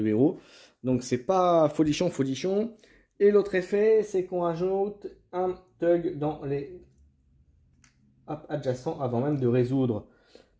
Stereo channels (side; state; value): both; identical; correlation 1.00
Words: héros. Donc c'est pas folichon, folichon. Et l'autre effet, c'est qu'on ajoute un Tug dans les adjacents avant même de résoudre.